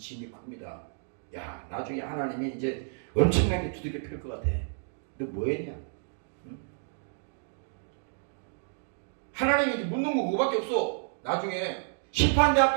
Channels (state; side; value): silent; left; digital silence